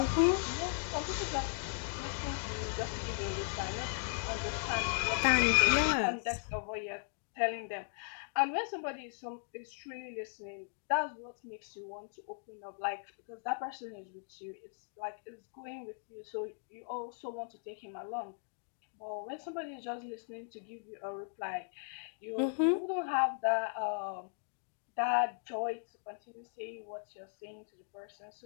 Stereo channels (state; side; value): silent; right; digital silence